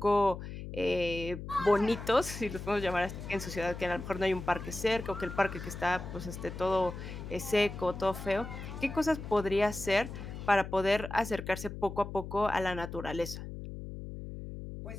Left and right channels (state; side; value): noise; left; hum, 9 dB below the sound